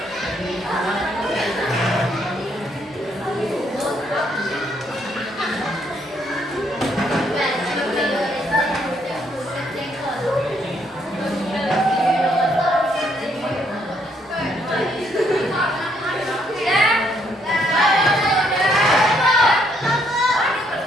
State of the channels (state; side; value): normal; both; correlation 0.71